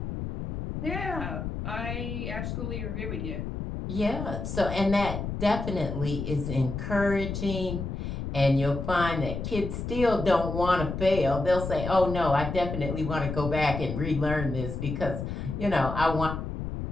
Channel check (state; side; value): noise; left; rumble, 5 dB below the sound